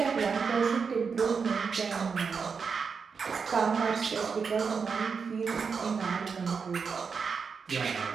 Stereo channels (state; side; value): quieter; left; 5.6 dB